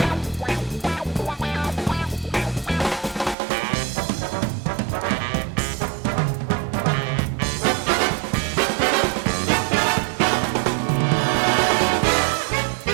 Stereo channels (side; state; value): left; drops out; at 3.4 s